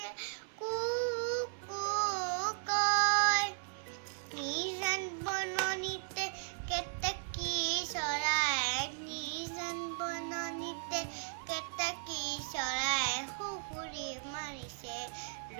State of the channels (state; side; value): silent; left; 54 dB below the other